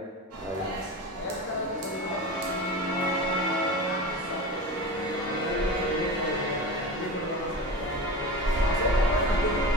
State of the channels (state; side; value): normal; both; correlation 0.29